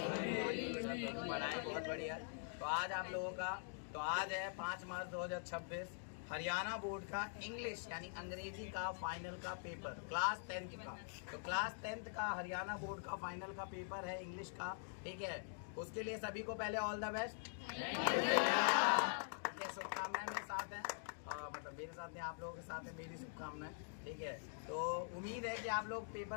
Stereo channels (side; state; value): right; silent; digital silence